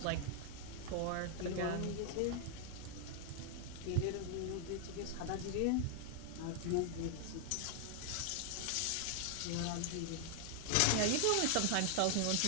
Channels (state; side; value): different; both; correlation 0.00